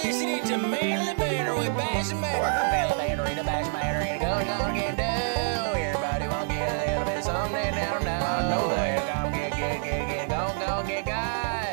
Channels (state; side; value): silent; left; digital silence